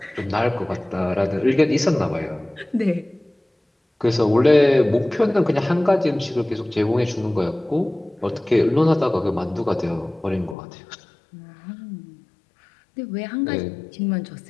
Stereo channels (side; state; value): right; drops out; at 10.6 s